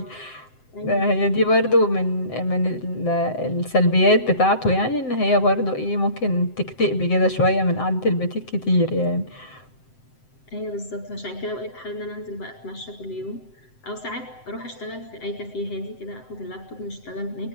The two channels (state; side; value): late; right; 7.7 ms